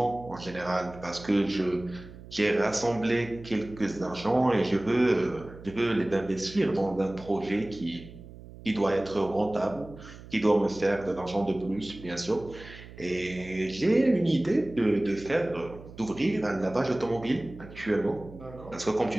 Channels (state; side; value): noise; right; hum, 17 dB below the sound